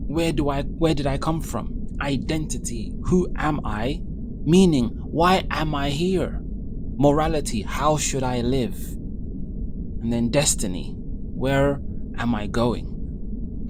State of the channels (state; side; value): identical; both; correlation 1.00